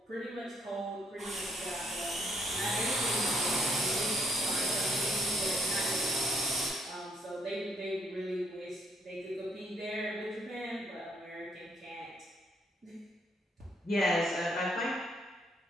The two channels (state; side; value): normal; both; correlation 0.70